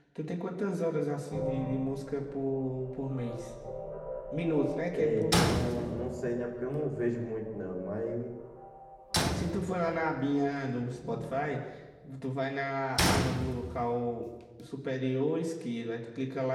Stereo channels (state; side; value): identical; both; correlation 1.00